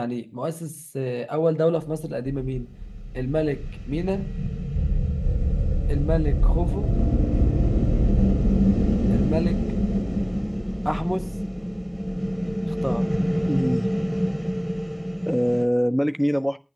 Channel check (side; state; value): both; identical; correlation 1.00